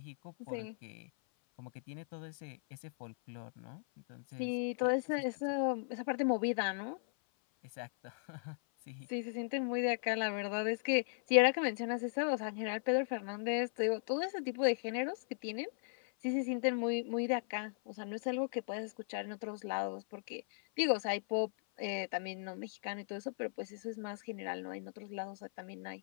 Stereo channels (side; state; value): right; silent; 53 dB below the other